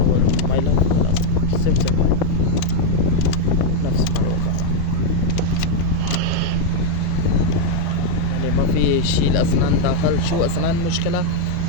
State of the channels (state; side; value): different; both; correlation 0.01